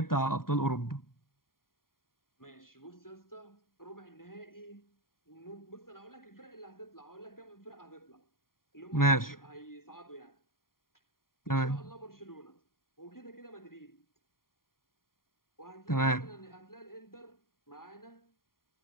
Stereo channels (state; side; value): late; right; 0.91 ms